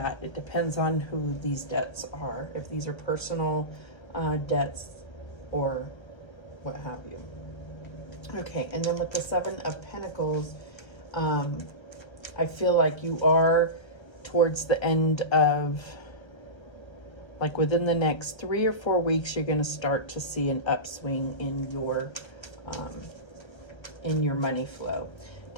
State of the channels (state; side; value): late; right; 1.3 ms